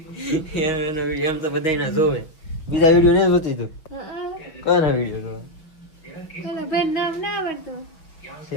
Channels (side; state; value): right; late; 6.5 ms